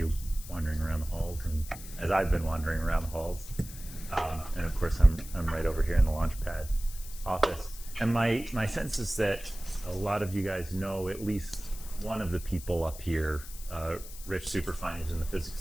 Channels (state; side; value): noise; left; hiss, 15 dB below the sound